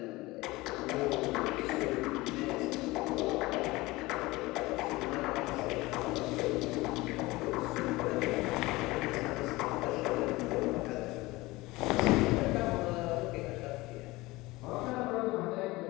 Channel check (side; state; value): right; quieter; 20.8 dB